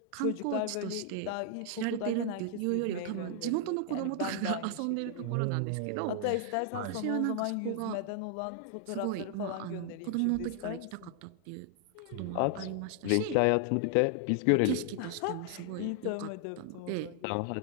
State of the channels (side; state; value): both; different; correlation 0.00